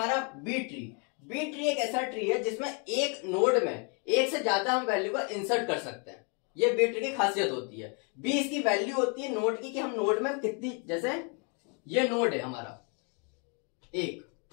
बी ट्री। बी ट्री एक ऐसा ट्री है जिसमें एक नोड में एक से ज्यादा हम वैल्यू को इंसर्ट कर सकते हैं, ये बी ट्री की खासियत होती है। बी इसकी वैल्यू होती है नोड की, कि हम नोड में कितनी, जैसे ये नोड है हमारा एक,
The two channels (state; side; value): quieter; right; 36.4 dB